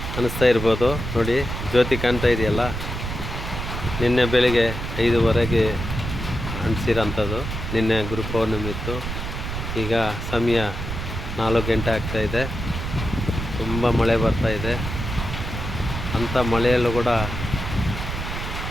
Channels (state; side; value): noise; right; rumble, 5 dB below the sound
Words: ಅನ್ನಿಸ್ತಾ ಇರ್ಬೋದು. ನೋಡಿ ಜ್ಯೋತಿ ಕಾಣ್ತಾ ಇದೆಯಲ್ಲ, ನಿನ್ನೆ ಬೆಳಿಗ್ಗೆ 5:15ಗೆ ಅಂಟಿಸಿರೋಂಥದ್ದು. ನಿನ್ನೆ ಗುರು ಪೌರ್ಣಮಿ ಇತ್ತು. ಈಗ ಸಮಯ 4 ಗಂಟೆ ಆಗ್ತಾಯಿದೆ. ತುಂಬ ಮಳೆ ಬರ್ತಾಯಿದೆ. ಅಂಥ ಮಳೆಯಲ್ಲೂ ಕೂಡ